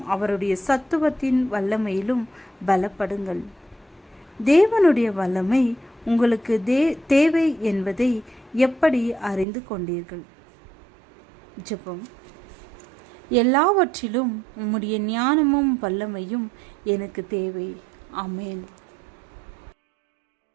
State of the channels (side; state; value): left; drops out; at 9.5 s